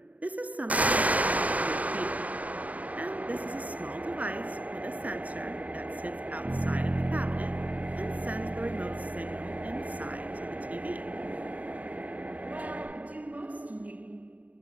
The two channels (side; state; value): left; late; 0.071 ms